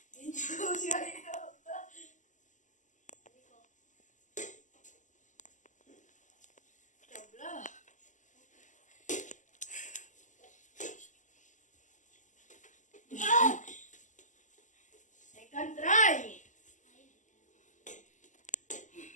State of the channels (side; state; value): right; late; 0.36 ms